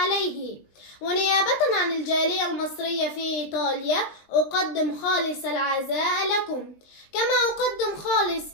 ونيابة عن الجالية المصرية في إيطاليا أقدم خالص العزاء لكم، كما أقدم خالص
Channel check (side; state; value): right; late; 19 ms